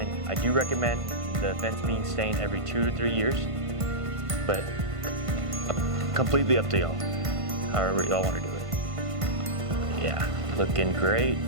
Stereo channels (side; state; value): left; late; 1.5 ms